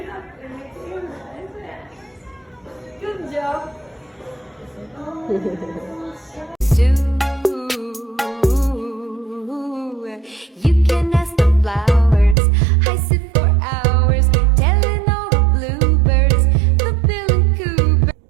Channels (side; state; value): left; drops out; at 12.4 s